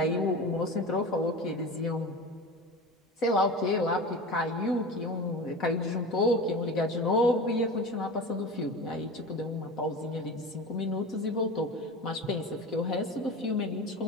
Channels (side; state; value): both; normal; correlation 0.30